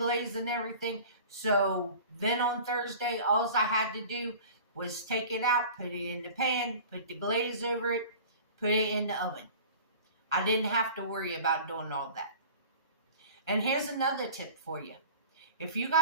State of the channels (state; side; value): inverted; both; correlation -0.42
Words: and everything. So then on Thursday, all I had to do was take it out, put it in the pan, put the glaze over it, put it in the oven. I didn't have to worry about doing all that. And here's another tip for you. If you